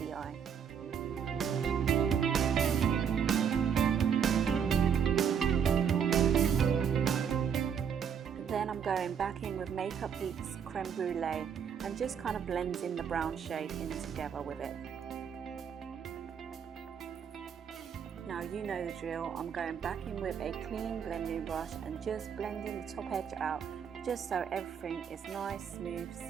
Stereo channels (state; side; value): quieter; left; 7.6 dB